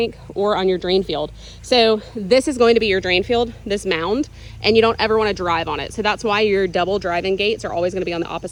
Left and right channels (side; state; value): both; identical; correlation 1.00